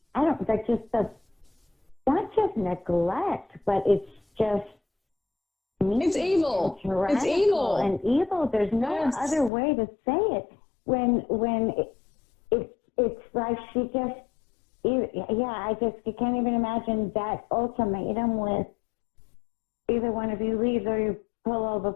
not just neglect, but it's just it's evil. It's evil and evil. There's no other way to say it. When it's like she just you can't even imagine that ultimatum with either one of you leaves or you pull all the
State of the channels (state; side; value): drops out; right; at 9.5 s